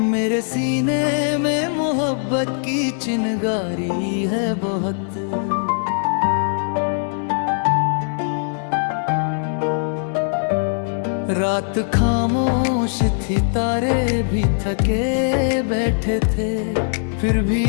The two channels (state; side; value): silent; right; 65 dB below the other